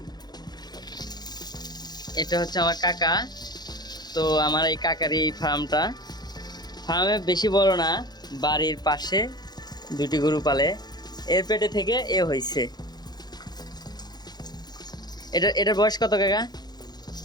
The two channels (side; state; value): right; late; 0.20 ms